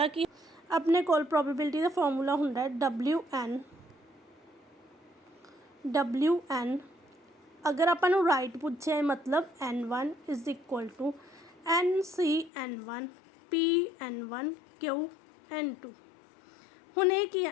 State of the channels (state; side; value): drops out; right; at 12.5 s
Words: ਕੀ ਆਪਣੇ ਕੋਲ, ਪ੍ਰੋਬੇਬਿਲਿਟੀ ਦਾ ਫਾਰਮੂਲਾ ਹੁੰਦਾ ਹੈ WN ਅਗਰ ਆਪਾਂ ਨੂੰ ਰਾਈਟ ਪੁੱਛਿਆ ਮਤਲਬ n1 = NC_n1 P_n1 Q_n2। ਹੁਣ ਇਹ ਕੀ